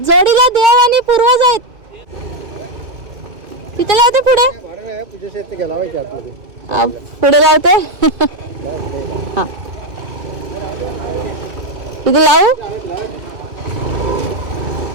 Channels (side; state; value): left; late; 2.5 ms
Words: जोडीला देव आणि पूर्वज आहेत. तिथे लावते पुढे लावते. हा, इथे लावू.